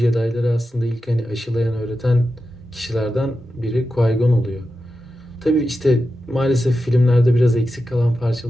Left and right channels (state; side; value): normal; both; correlation 0.91